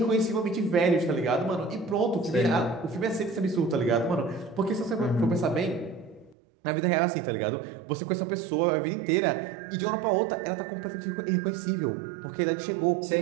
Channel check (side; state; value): left; drops out; at 6.4 s